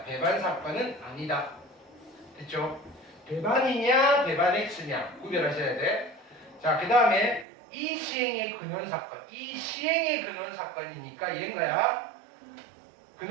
배반 사건은 아니다. 됐죠? 배반이냐 배반 X냐 구별하셔야 돼. 자, 그 다음에 이 시행의 근원 사건. 이 시행의 근원 사건이니까 얘인가야?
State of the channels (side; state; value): left; drops out; at 7.5 s